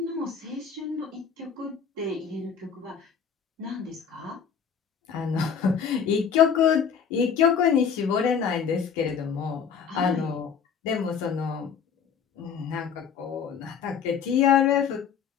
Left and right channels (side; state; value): right; quieter; 7.0 dB